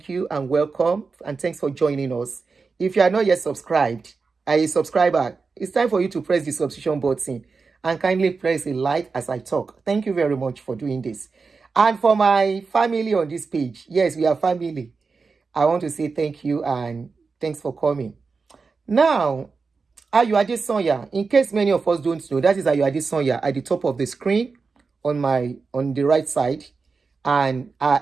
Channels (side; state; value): left; quieter; 4.6 dB